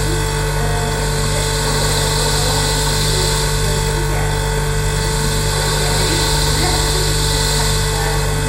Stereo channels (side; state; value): both; identical; correlation 1.00